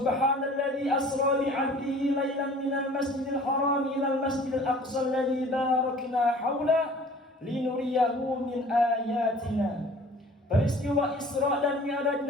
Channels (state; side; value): normal; both; correlation 0.48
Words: asra bi 'abdihi lailan minal masjidil haram ilal masjidil aqsa alladzi barakna haula linuriyahu min ayatina. Peristiwa Isra dan Mi'raj